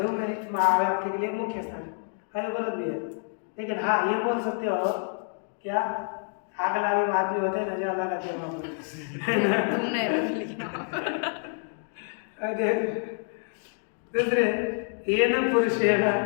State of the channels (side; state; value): right; silent; 60 dB below the other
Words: मिनट में आपके लिए मुख्य स्थान आयोग अलग भी है। लेकिन हाँ ये बोल सकते हो क्या आग लगे आदमी होते हैं ना जो अल्लाह का वहाँ तुमने लेकिन दूसरे ये न पुरुषेण